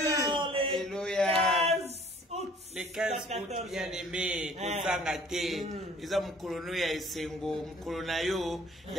Alléluia. Les 15 août, bien aimé, Kozangate, ils ont mukolono ya esengo, mukolona yo,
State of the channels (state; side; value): normal; both; correlation 0.54